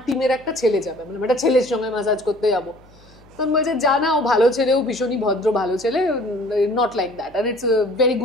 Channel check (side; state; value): left; noise; hum, 27 dB below the sound